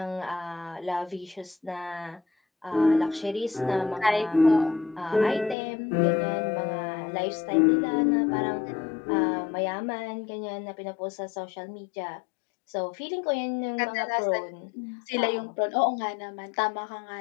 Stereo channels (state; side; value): drops out; right; at 5.6 s